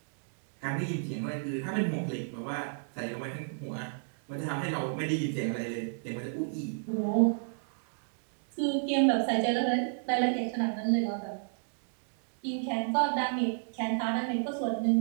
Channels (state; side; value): silent; left; digital silence